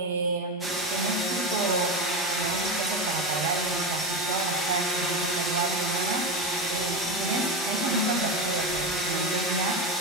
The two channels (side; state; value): both; normal; correlation 0.18